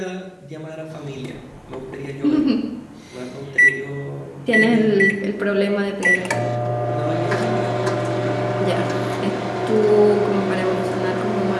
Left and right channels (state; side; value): identical; both; correlation 1.00